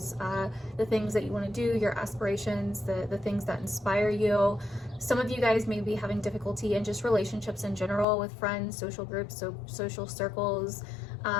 the things that you want to do, your aspirations, the things that inspire you. Some of you guys may be having difficulty in just relationships in general with friends, social groups, so social circles,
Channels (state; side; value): drops out; right; at 8.1 s